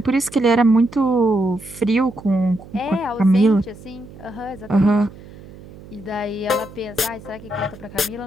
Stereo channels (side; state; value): right; noise; hum, 18 dB below the sound